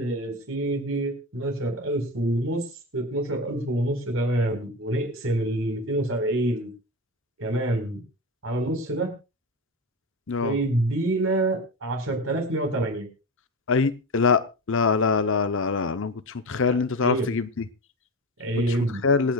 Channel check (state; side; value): normal; both; correlation 0.22